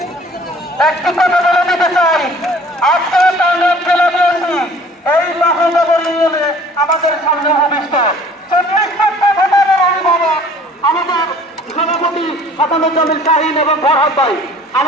একটি কথা বলে দিতে চাই, আজকে টাঙ্গাইল জেলা বিএনপি এই মহানগর ইউনিয়নে আমাদের সামনে ভবিষ্য 40টা ভোটারের অভিভাবক আমাদের সভাপতি হাসানুজ্জামিল শাহীন এবং ফরহাদ ভাই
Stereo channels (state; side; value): normal; both; correlation 0.51